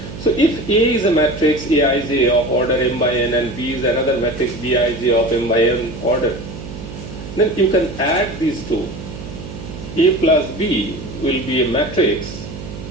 So if A is a matrix Aij of order m by n and B is another matrix Bij of m by n order, then you can add these two. A plus B will be a matrix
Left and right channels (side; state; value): right; noise; hum, 11 dB below the sound